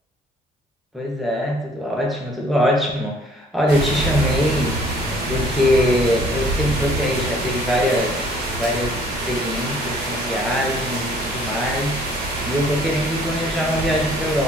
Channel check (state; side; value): normal; both; correlation 0.58